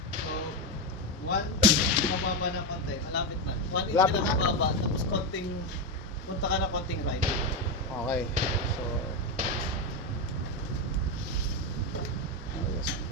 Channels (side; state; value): both; normal; correlation 0.10